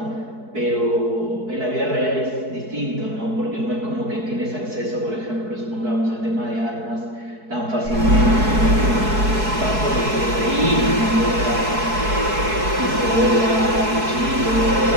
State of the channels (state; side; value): late; left; 4.6 ms